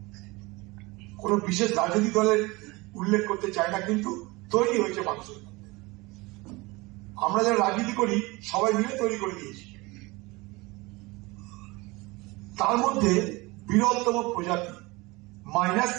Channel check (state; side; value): quieter; left; 23.3 dB